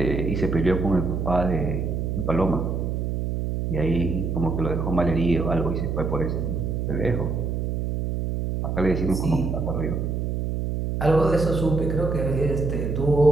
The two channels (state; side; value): noise; right; hum, 1 dB below the sound